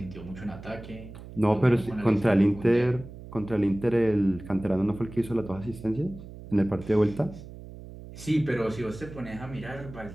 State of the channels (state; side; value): noise; right; hum, 15 dB below the sound